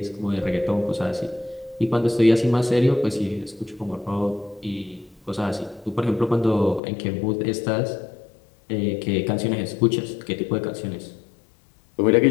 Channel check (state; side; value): drops out; right; at 6.8 s